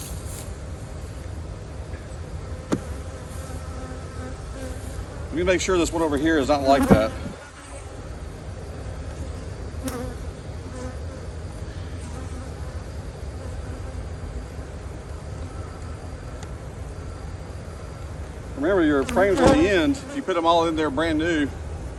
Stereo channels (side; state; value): both; identical; correlation 1.00